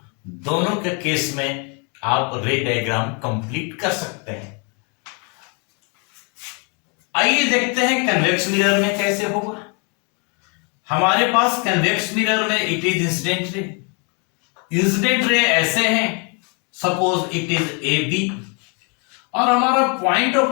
दोनों के केस में आप रे डायग्राम कंप्लीट कर सकते हैं। आइए देखते हैं कन्वेक्स मिरर में कैसे होगा। हमारे पास कन्वेक्स मिरर में it is incident ray, incident ray ऐसे हैं, suppose it is A B और हमारा पॉइंट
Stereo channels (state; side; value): quieter; right; 34.1 dB